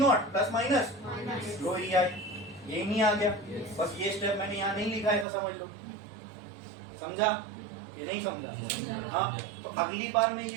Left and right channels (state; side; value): drops out; left; at 5.2 s